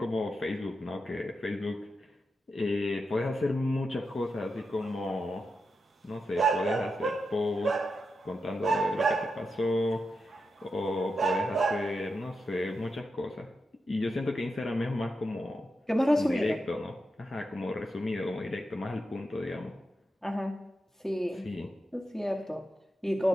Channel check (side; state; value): both; normal; correlation 0.87